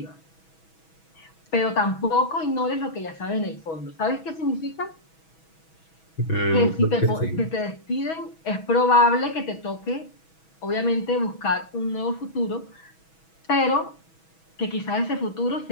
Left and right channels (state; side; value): late; right; 6.2 ms